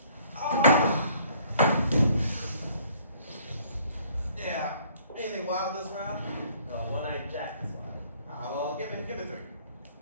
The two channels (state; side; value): inverted; both; correlation -0.60